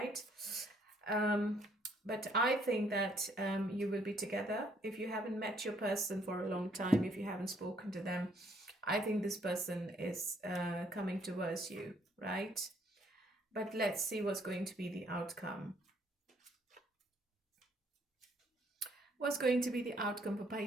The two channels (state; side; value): normal; both; correlation 0.67